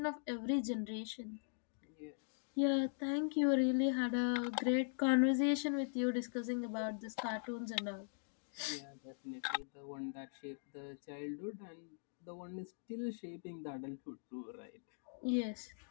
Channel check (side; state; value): right; silent; digital silence